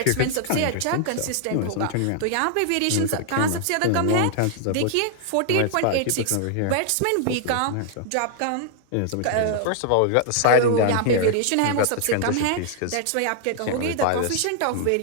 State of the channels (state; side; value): different; both; correlation -0.01